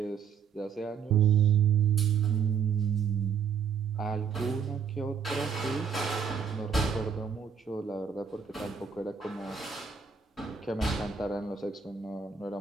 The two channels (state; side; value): quieter; left; 6.7 dB